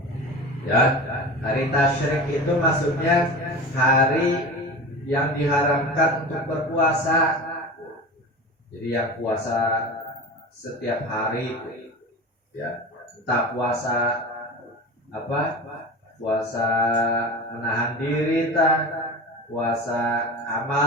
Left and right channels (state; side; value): normal; both; correlation 0.31